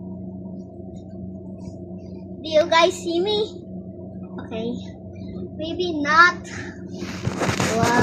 Do you guys see me? Okay. Maybe not.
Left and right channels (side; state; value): both; identical; correlation 1.00